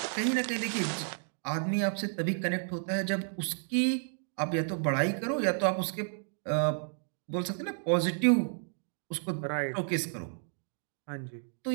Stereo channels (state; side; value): silent; left; digital silence